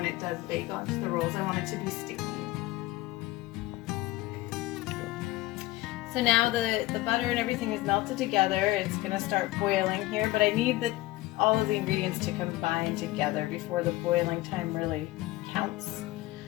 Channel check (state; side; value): quieter; right; 18.1 dB